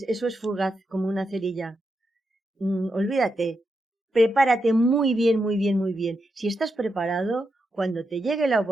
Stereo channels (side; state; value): both; normal; correlation 0.85